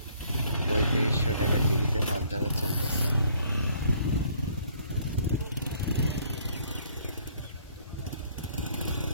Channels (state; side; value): inverted; both; correlation -0.62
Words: 3500 টাকা টিকিটে মাছ ধরা চলতেছে।